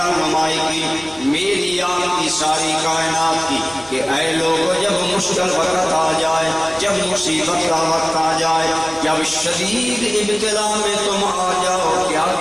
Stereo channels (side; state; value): right; noise; hum, 25 dB below the sound